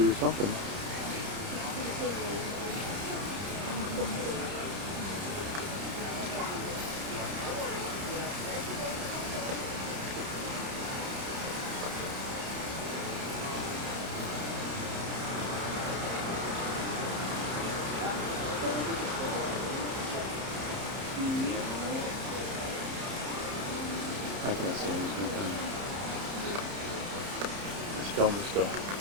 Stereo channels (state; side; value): late; left; 30 ms